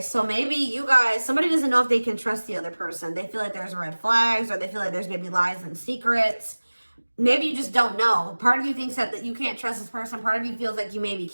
so maybe you guys, somebody doesn't know if they can trust the other person. They feel like there's red flags, or they feel like there's maybe lies and secrets. Maybe you just don't know. Part of you thinks that you can't trust this person. Part of you feels like you maybe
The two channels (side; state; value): both; inverted; correlation -1.00